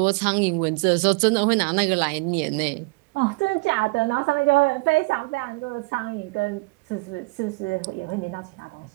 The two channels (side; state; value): left; quieter; 27.2 dB